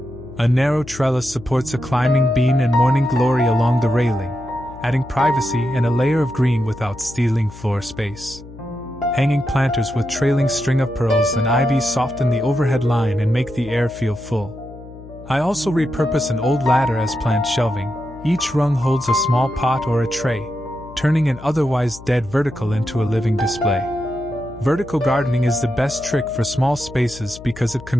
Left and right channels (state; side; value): noise; left; hum, 17 dB below the sound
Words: A narrow trellis supports a climbing bean and morning glory along the railing, adding privacy and a layer of green without stealing floor space. Hanging planters with trailing string of pearls and ivy soften the overhead line and make the air feel full. I also repurpose an old ladder as plant shelving. Each rung holds a small pot or a tray, turning an otherwise dead vertical into a living display. Vertical gardening is the best trick for small spaces because it